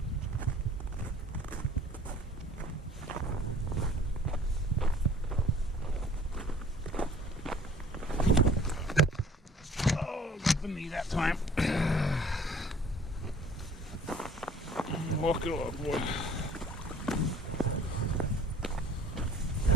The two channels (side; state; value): both; normal; correlation 0.53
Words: Oh, got the knee that time. Walk it off, boy.